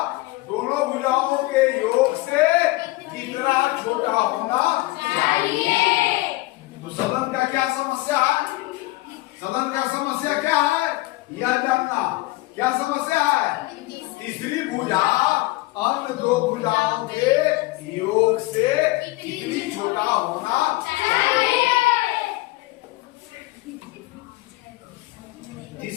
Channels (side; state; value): right; quieter; 20.3 dB